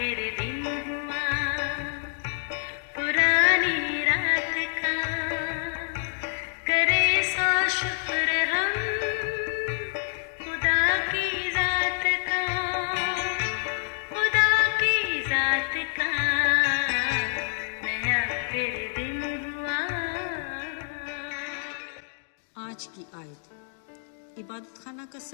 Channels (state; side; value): silent; right; digital silence